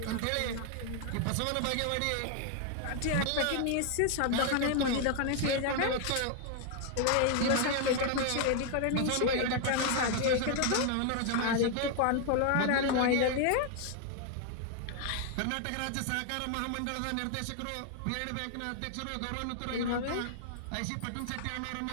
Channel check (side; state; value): both; different; correlation 0.00